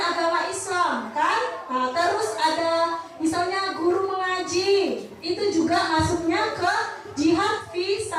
agama Islam, kan? Terus ada misalnya guru mengaji, itu juga masuknya ke jihad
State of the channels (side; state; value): both; identical; correlation 1.00